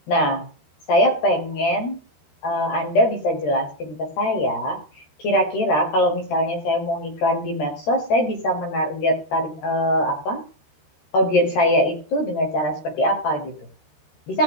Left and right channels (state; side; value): late; right; 13 ms